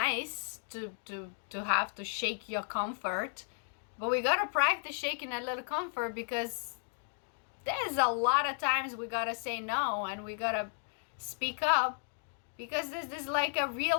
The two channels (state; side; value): silent; right; 55 dB below the other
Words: to have to shake your comfort, but we gotta practice shaking that little comfort, because there's a lot of times we gotta say no, and we gotta speak up, because there's like a